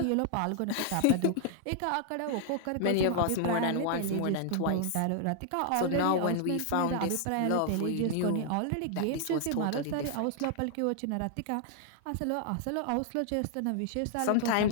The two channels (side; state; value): both; different; correlation -0.01